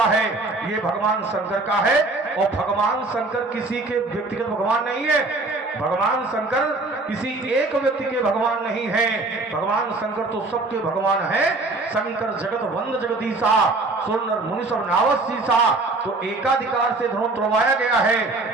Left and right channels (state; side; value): quieter; left; 3.2 dB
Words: है ये भगवान शंकर का है। और भगवान शंकर किसी के व्यक्तिगत भगवान नहीं है, भगवान शंकर किसी एक व्यक्ति के भगवान नहीं है, भगवान शंकर तो सबके भगवान है। शंकर जगत वंद जगदीशा सुर मुनि सब नावसीसा। तो एकाधिकार से धनुष तोड़वाया गया है,